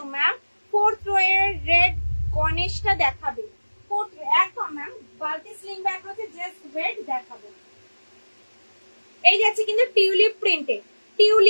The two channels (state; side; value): inverted; both; correlation -1.00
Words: ma'am. 4th row এর রেড গণেশটা দেখাবে, 4th একদম ম্যাম। বালতি স্লিং ব্যাগ হচ্ছে, জাস্ট ওয়েট দেখাবো। এই যাচ্ছে কিন্তু টিউলিপ প্রিন্টে,